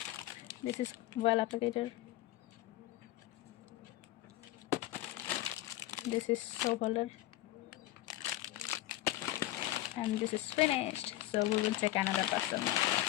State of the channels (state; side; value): quieter; right; 15.5 dB